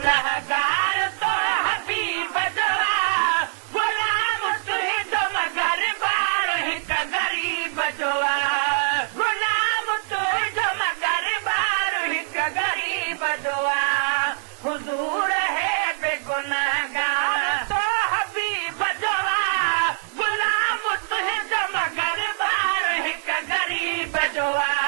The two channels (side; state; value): left; silent; digital silence